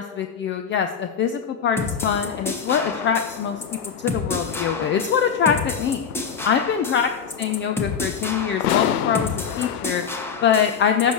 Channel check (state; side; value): quieter; right; 7.0 dB